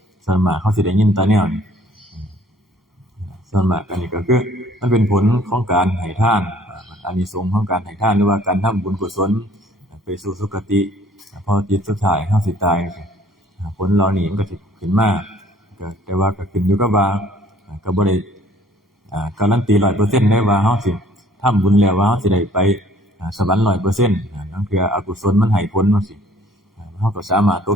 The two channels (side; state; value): both; normal; correlation 0.57